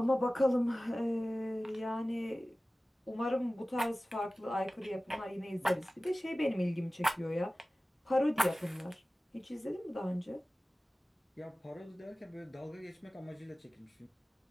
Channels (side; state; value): both; normal; correlation 0.97